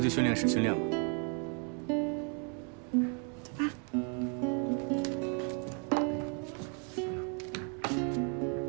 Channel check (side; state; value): left; quieter; 38.6 dB